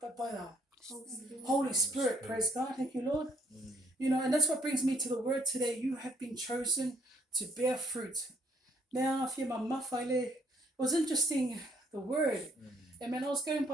but by the Holy Spirit. Praise God. Thank you, Lord. And that's what brings me to the word today. You have been chosen to bear fruit. Now, if you're my mafile, it was interesting, the word. Amen. I was going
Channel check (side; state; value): both; normal; correlation 0.66